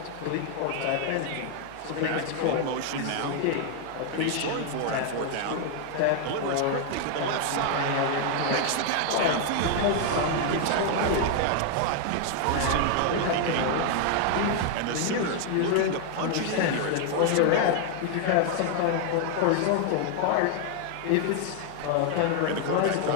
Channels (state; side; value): different; both; correlation 0.00